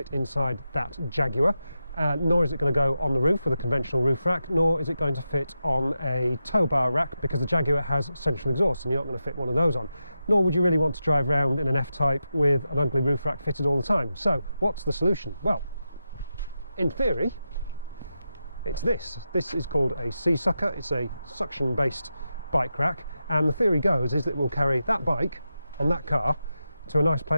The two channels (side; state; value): both; inverted; correlation -0.89